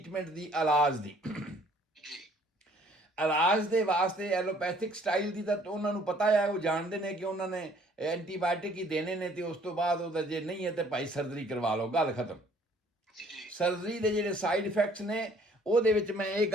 ਦੀ, ਇਲਾਜ ਦੀ। ਇਲਾਜ ਦੇ ਵਾਸਤੇ ਐਲੋਪੈਥਿਕ ਸਟਾਈਲ ਦੀ ਤਾਂ ਉਹਨਾਂ ਨੂੰ ਪਤਾ ਹੈ, ਉਹ ਜਾਣਦੇ ਨੇ ਕਿ ਉਹਨਾਂ ਨੇ ਐਂਟੀਬਾਇਓਟਿਕ ਹੀ ਦੇਣੇ ਨੇ ਤੇ ਉਸ ਤੋਂ ਬਾਅਦ ਉਹਦਾ ਜੇ ਨਹੀਂ ਹੈ ਤੇ ਭਾਈ ਸਰਜਰੀ ਕਰਵਾ ਲਓ, ਗੱਲ ਖਤਮ। ਸਰਜਰੀ ਦੇ ਜਿਹੜੇ ਸਾਈਡ ਇਫੈਕਟਸ ਨੇ ਉਹਦੇ ਵਿੱਚ ਮੈਂ ਇਹ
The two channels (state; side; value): normal; both; correlation 0.59